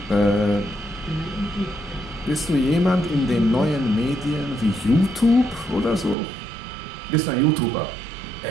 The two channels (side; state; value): left; drops out; at 6.2 s